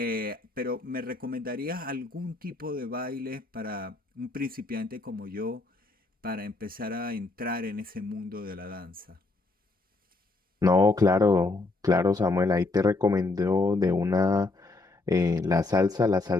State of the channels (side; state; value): right; quieter; 3.2 dB